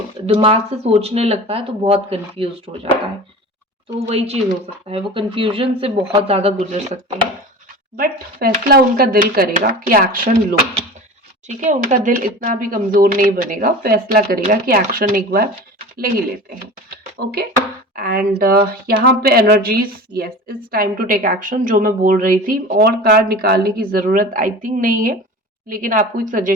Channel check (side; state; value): both; normal; correlation 0.35